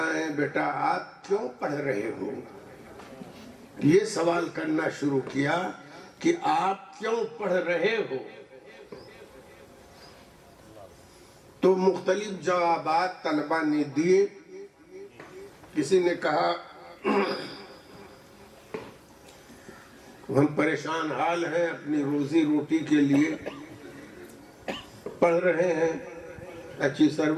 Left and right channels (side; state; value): both; identical; correlation 1.00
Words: ہیں بیٹا؟ آپ کیوں پڑھ رہے ہو؟ یہ سوال کرنا شروع کیا کہ آپ کیوں پڑھ رہے ہو؟ تو مختلف جوابات طلبہ نے دیے. کسی نے کہا ہم پریشان حال ہیں، اپنی روزی روٹی کے لیے پڑھ رہے ہیں، اچھی